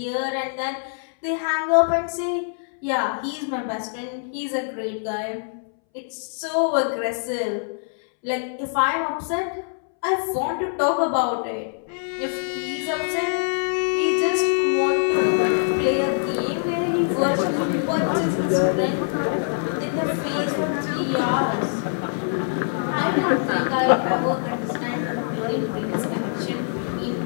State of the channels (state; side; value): silent; right; 63 dB below the other